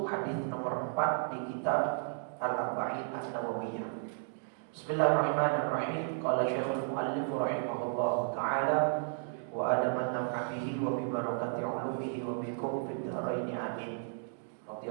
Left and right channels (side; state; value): left; silent; digital silence